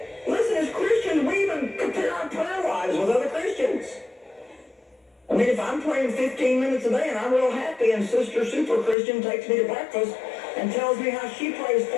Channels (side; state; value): right; drops out; at 9.0 s